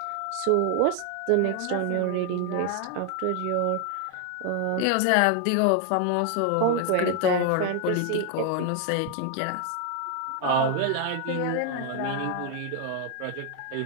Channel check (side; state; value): both; different; correlation 0.00